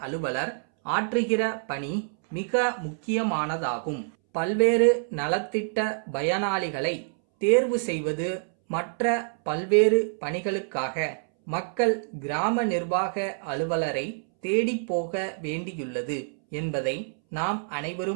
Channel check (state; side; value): silent; left; 60 dB below the other